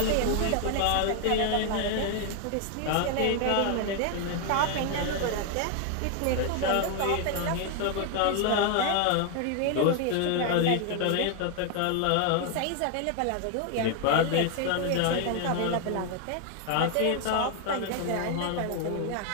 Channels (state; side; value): different; both; correlation 0.00